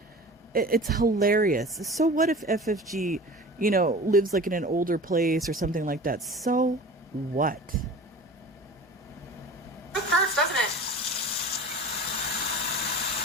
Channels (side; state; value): both; normal; correlation 0.38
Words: It's hilarious. So what if FFG, you know, lives like in an older place or something like that? So what? It hurts, doesn't it?